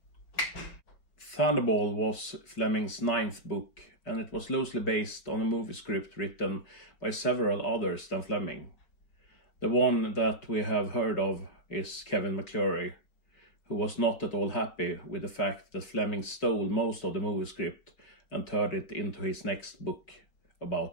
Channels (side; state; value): right; late; 5.2 ms